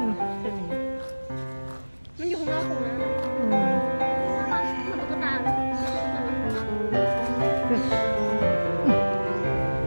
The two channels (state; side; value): inverted; both; correlation -1.00